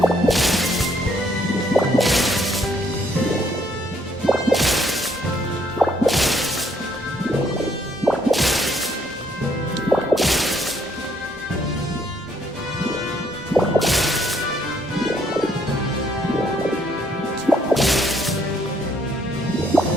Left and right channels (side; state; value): both; normal; correlation 0.68